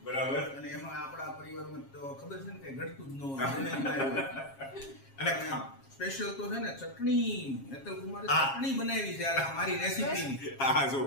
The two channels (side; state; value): right; late; 7.4 ms